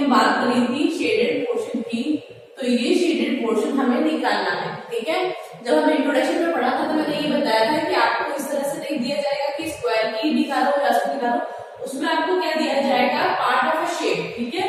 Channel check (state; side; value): identical; both; correlation 1.00